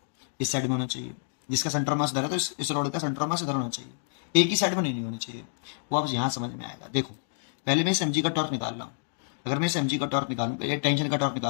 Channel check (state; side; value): silent; right; digital silence